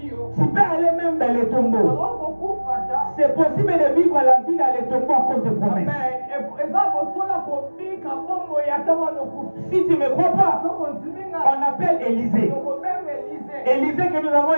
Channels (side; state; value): both; inverted; correlation -1.00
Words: tu peux aller même dans les tombeaux. C'est possible de vivre la vie dans les tombeaux à cause de promesses. Si tu ne me crois pas, on appelle Élisée. Élisée que nous avons